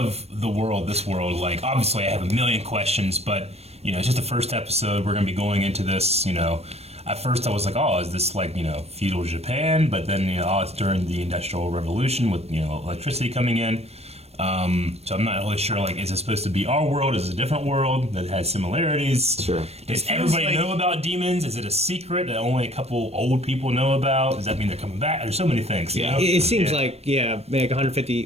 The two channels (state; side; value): late; left; 0.30 ms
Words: this world, like, obviously I have a million questions, but, you know, it's just the first episode. We're going to be going into this, you know. At first I was like, oh, is this like, you know, feudal Japan? But then, you know, oh, it's during the Industrial Revolution with, you know, electricity coming in. So I'm not really sure, like, is it supposed to be our world? Is it a different world that has similarities? Sure. Does feels everybody like- know about demons? Is it a secret that only a couple old people know about? Does that mean they're coming back? There's so many things, you Yeah. know? It seems Yeah. like, yeah, like